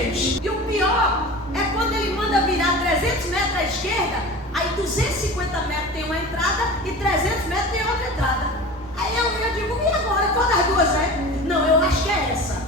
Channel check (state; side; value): normal; both; correlation 0.35